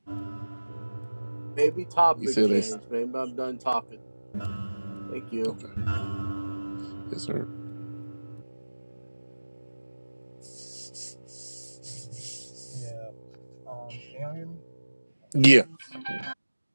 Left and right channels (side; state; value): both; inverted; correlation -1.00